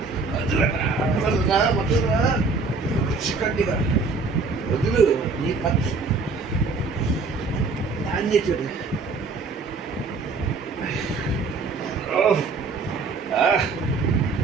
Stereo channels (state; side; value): quieter; left; 4.1 dB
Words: వదులురా చిక్కటిగా వదులు. నీ పచ్చి దాన్ని చూడు.